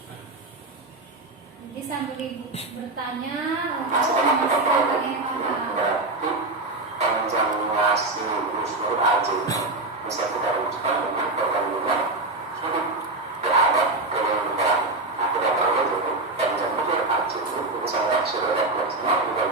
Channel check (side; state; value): left; quieter; 3.0 dB